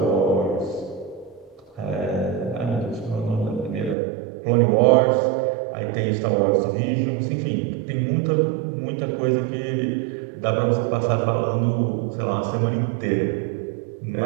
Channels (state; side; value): drops out; left; at 4.0 s